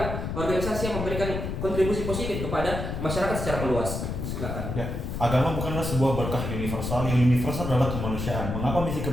organisasi yang memberikan kontribusi positif kepada masyarakat secara meluas. Silakan. Ya, agama bukanlah sebuah berkah universal. Yang universal adalah kemanusiaan. Mengapa misi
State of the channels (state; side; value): noise; left; rumble, 4 dB below the sound